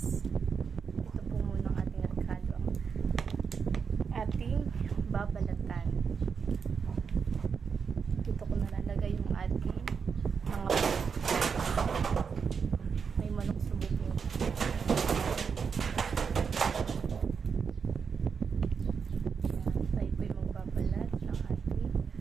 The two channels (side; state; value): left; quieter; 6.1 dB